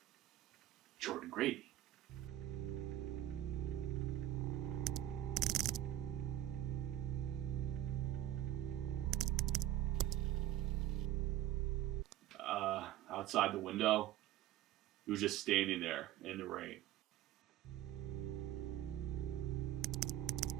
Jordan Grady. Outside the window, he was just standing there in the rain.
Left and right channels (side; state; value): left; quieter; 13.2 dB